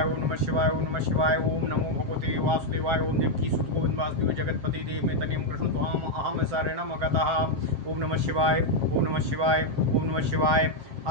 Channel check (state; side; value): late; left; 7.6 ms